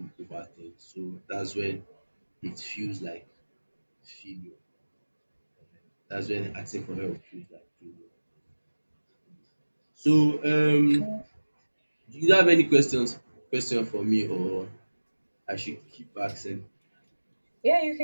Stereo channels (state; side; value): inverted; both; correlation -1.00